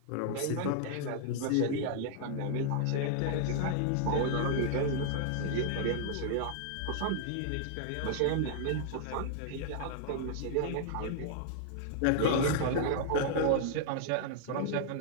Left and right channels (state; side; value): different; both; correlation -0.01